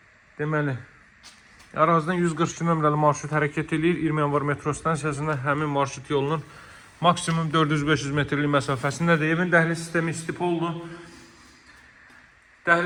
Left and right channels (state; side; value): identical; both; correlation 1.00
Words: Deməli, ərazidən 142 nömrəli marşrut hərəkət edir. 20 yanvar metro stansiyasında həmin marşrut yolunun maksimum 400-500 metrlik məsafəsindədir. Evin dəhliz sistemi istipoldur.